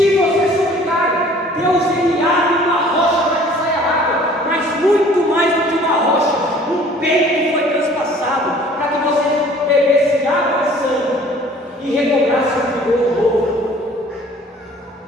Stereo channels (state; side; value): normal; both; correlation 0.52